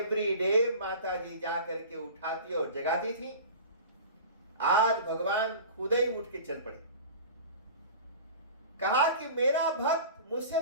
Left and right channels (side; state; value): both; inverted; correlation -0.37